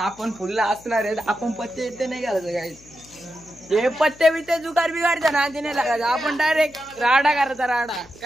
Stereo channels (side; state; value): left; noise; hum, 24 dB below the sound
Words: फुलला असणार आहेत. आपण पत्ते येते नाही घालायचं काय हे पत्ते बित्ते जुगार बिगारचा ना ते नाही लागायचं. आपण डायरेक्ट राडा करायचा राडा.